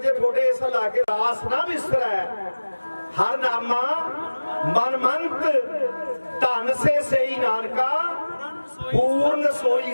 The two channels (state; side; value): inverted; both; correlation -1.00